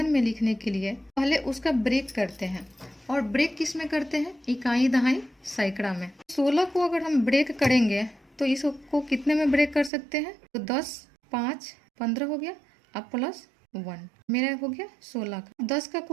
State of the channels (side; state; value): left; drops out; at 9.9 s